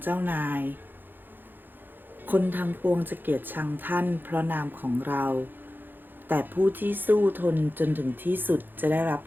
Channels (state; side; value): late; left; 0.093 ms